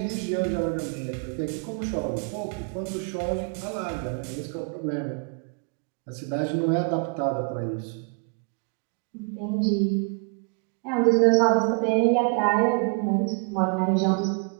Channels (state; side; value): quieter; left; 36.9 dB